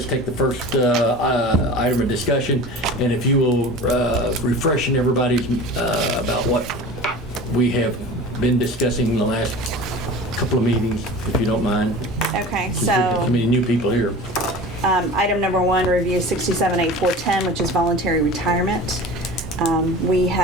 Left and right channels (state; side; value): normal; both; correlation 0.37